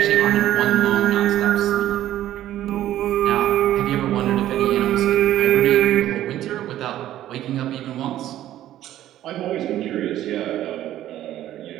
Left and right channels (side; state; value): left; quieter; 13.0 dB